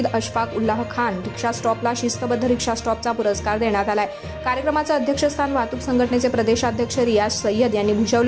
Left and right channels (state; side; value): identical; both; correlation 1.00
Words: अशफाक उल्लाह खान रिक्षा स्टॉपला शिस्तबद्ध रिक्षा स्टॉपचा पुरस्कार देण्यात आलाय। कार्यक्रमाचं अध्यक्षस्थान वाहतूक संघटनेचे प्रदेशाध्यक्ष रियाज सय्यद यांनी